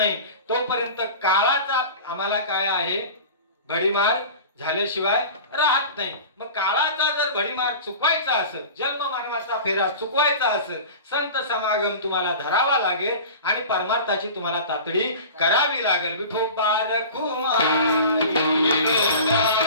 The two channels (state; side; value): inverted; both; correlation -0.36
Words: तोपर्यंत काळाचा आम्हाला काय आहे भडीमार झाल्याशिवाय राहत नाही. मग काळाचा जर भडीमार चुकवायचा असेल, जन्म मरणाचा फेरा चुकवायचा असेल, संत समागम तुम्हाला धरावा लागेल आणि परमार्थाची तुम्हाला तातडी करावी लागेल. विठोबा रखुमाई, विठोबा